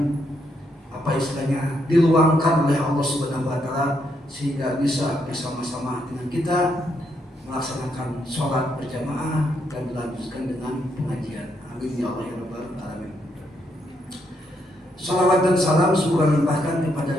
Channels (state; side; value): normal; both; correlation 0.77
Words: apa istilahnya diluangkan oleh Allah Subhanahu wa taala sehingga bisa bersama-sama dengan kita melaksanakan sholat berjamaah dan dilanjutkan dengan pengajian. Amin ya Allah ya rabbal alamin. Salawat dan salam semoga limpahkan kepada